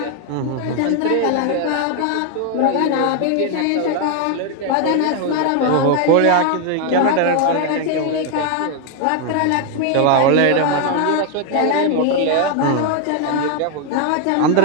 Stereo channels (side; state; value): both; different; correlation 0.01